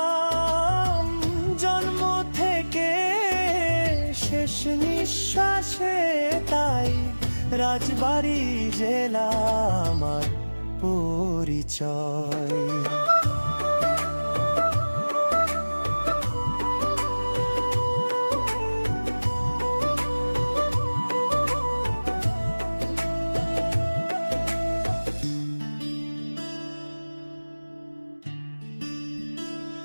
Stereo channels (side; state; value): both; inverted; correlation -1.00